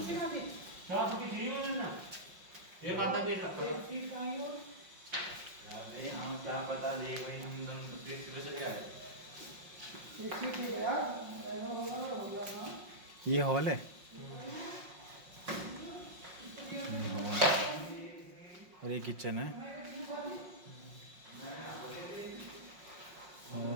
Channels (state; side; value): late; left; 5.5 ms